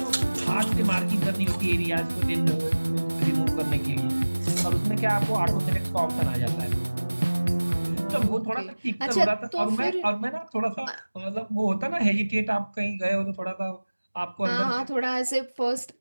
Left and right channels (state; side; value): inverted; both; correlation -1.00